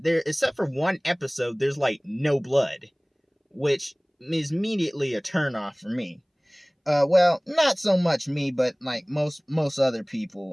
except for one episode. There's like no blood, which is immediately a turnoff for me. Well, not so much me, but like most other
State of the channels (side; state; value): both; identical; correlation 1.00